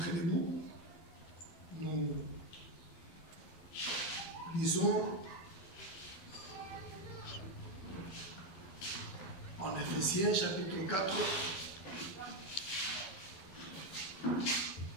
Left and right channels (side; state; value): right; late; 12 ms